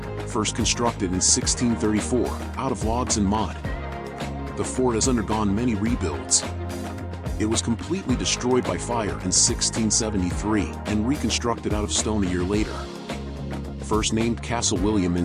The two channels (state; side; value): identical; both; correlation 1.00